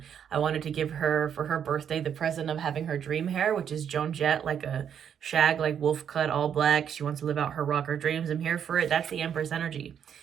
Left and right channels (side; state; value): left; quieter; 8.4 dB